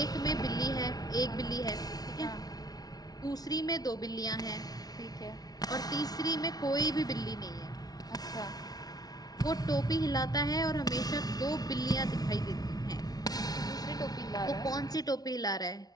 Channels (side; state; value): right; late; 0.19 ms